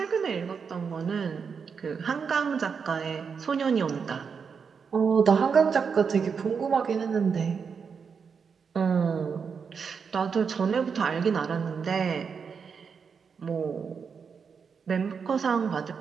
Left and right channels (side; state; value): left; quieter; 6.0 dB